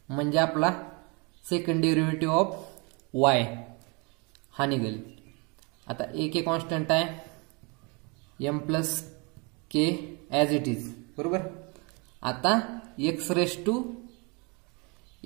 म्हणजे आपला सेकंड डेरिव्हेटिव्ह ऑफ y हा निघेल. आता ए के कॉन्स्टंट आहे, m plus k as it is बरोबर. आता एक्स रेस टू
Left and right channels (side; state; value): left; quieter; 30.8 dB